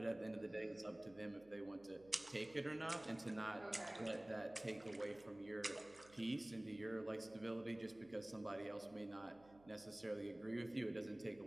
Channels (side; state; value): right; noise; hum, 23 dB below the sound